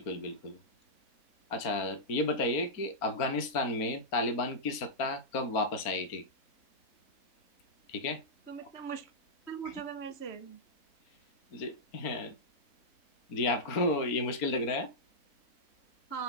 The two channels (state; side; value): late; right; 4.3 ms